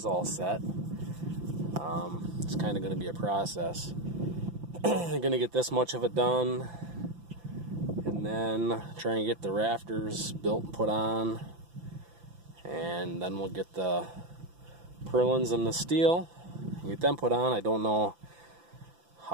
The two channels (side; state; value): left; late; 5.9 ms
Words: all set. It's kind of going to be a process. I'm going to get this much of it done, and then try and get the rafters built and put on, and then we'll get the purlins and the steel and get them put on. I don't know